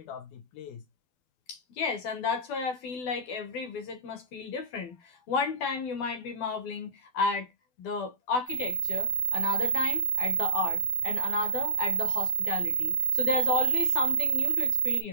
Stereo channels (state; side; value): late; right; 12 ms